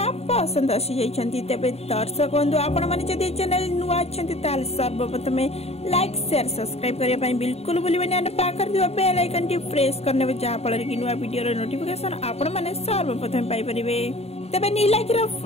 पसंद आसी जाइछंती। तेबे दर्शक बंधु आपण माने जदि चैनल नुआ छंती ताल सर्वप्रथम लाइक शेयर सब्सक्राइब करिया पई बिल्कुल भूलिबेनी और पाकर दियो बेल आइकन टी प्रेस करने जा फल कि नुआ वीडियो रो नोटिफिकेशन आपण माने सर्वप्रथम पाई परिबे। तेबे नीलाखी रो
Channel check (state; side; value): late; right; 0.30 ms